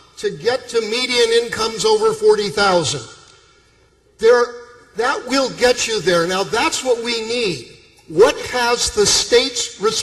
to get to median incomes over $40,000. That will get you there. Now that's what we need. What has the state's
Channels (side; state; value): both; identical; correlation 1.00